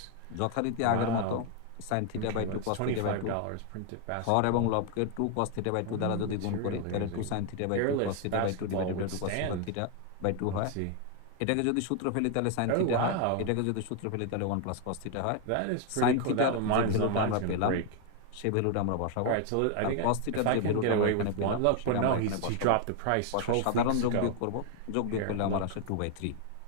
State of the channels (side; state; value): both; different; correlation 0.01